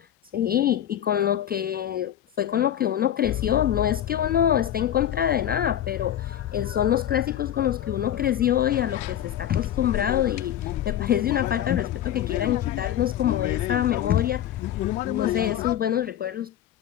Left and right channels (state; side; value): quieter; right; 11.0 dB